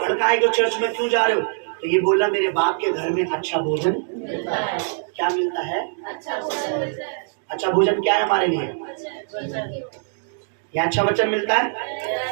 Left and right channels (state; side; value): silent; left; digital silence